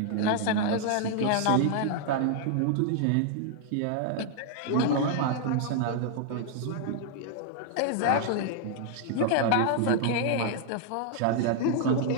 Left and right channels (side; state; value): both; different; correlation 0.00